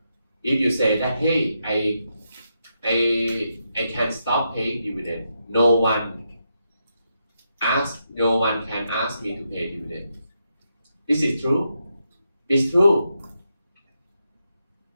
say that, hey, I can stop paying dividend, no one can ask me to pay dividend. This is true. It's true.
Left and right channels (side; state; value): both; inverted; correlation -0.83